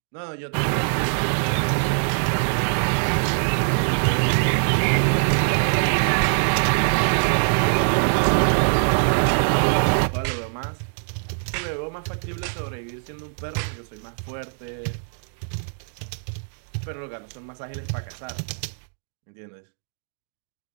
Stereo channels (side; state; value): left; silent; 63 dB below the other